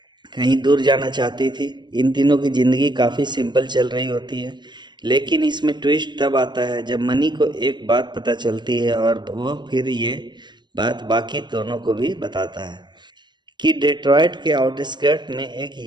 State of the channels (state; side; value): late; left; 0.22 ms